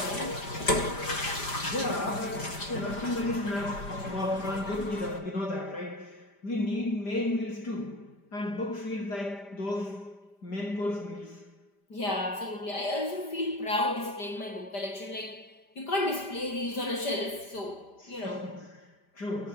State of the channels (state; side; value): late; right; 5.0 ms